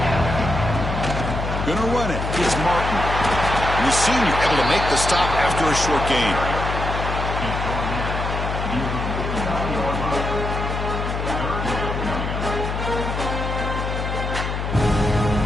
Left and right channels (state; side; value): noise; left; hum, 3 dB below the sound